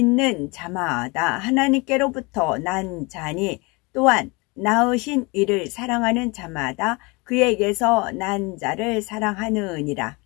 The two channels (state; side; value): quieter; right; 27.0 dB